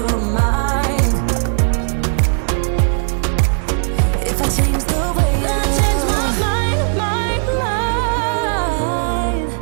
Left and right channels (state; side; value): silent; left; 65 dB below the other